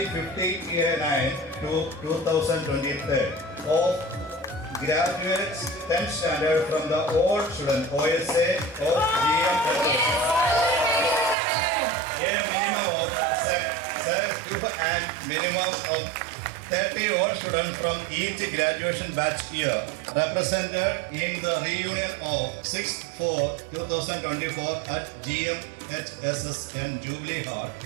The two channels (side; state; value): left; drops out; at 11.4 s